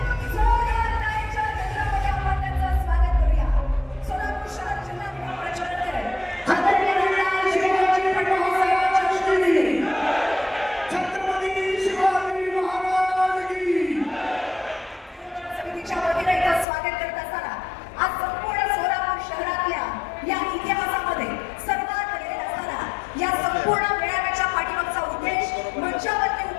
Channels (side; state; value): right; drops out; at 16.7 s